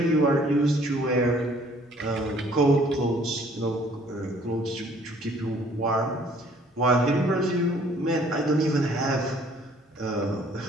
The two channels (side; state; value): both; normal; correlation 0.58